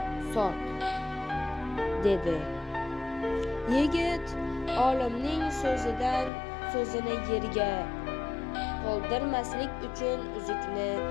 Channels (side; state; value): right; drops out; at 6.3 s